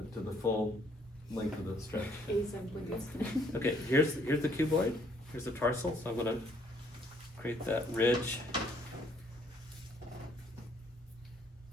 to the full length of the stretch. Okay, here's the cuboid, here's the tarsal, so I'm gonna create that ridge.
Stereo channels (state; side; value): normal; both; correlation 0.65